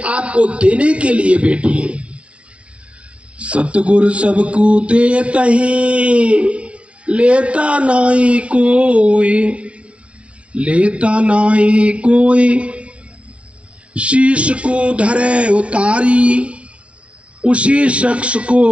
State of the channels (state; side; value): late; left; 0.061 ms